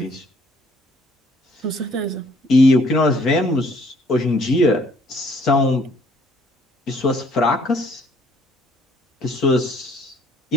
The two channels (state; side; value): normal; both; correlation 0.62